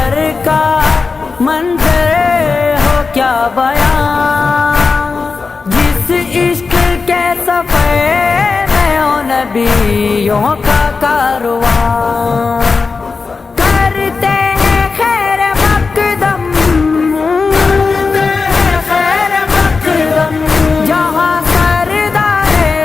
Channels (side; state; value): right; quieter; 4.5 dB